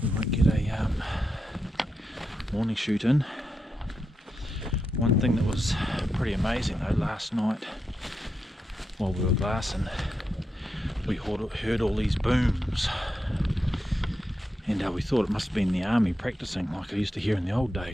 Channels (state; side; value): normal; both; correlation 0.86